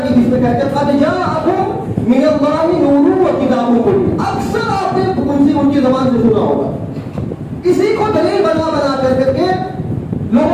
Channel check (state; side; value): identical; both; correlation 1.00